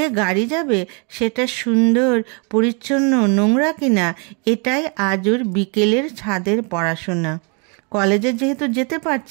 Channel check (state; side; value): quieter; left; 35.1 dB